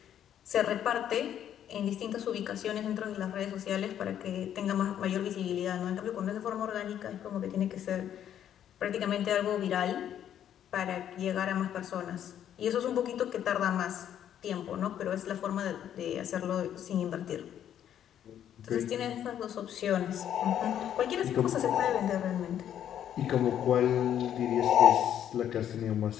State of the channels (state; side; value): quieter; right; 10.2 dB